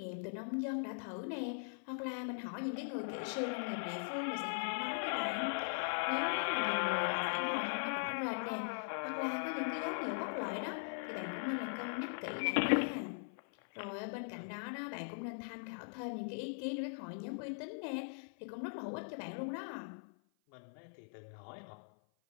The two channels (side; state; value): right; silent; 51 dB below the other